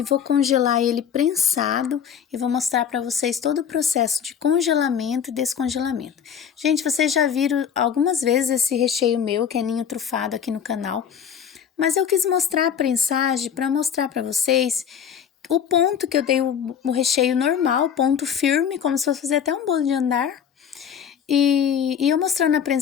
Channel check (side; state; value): right; quieter; 8.0 dB